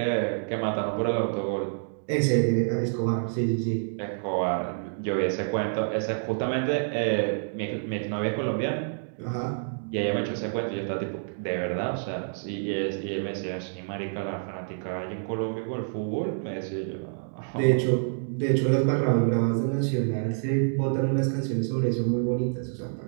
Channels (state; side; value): silent; left; digital silence